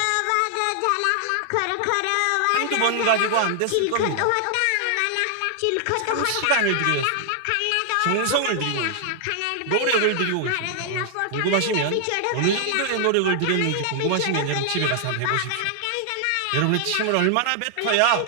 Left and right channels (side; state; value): both; different; correlation 0.00